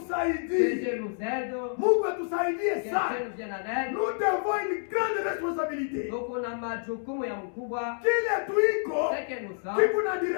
Dieu nous aide, Mungu atusaidie que sana. Dieu nous vienne en aide. Nous devons une grande responsabilité. Donc kuna majukumu ya mkubwa, Kile tuiko ce que nous sommes, kikuna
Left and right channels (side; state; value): right; silent; 59 dB below the other